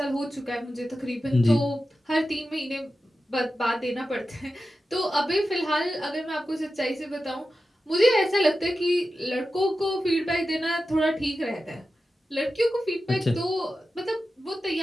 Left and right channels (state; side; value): normal; both; correlation 0.92